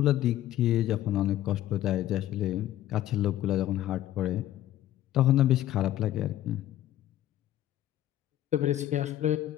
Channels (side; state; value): right; quieter; 13.2 dB